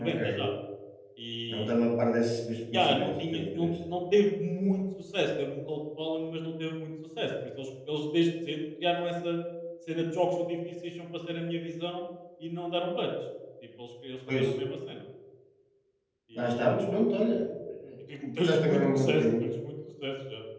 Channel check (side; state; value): both; identical; correlation 1.00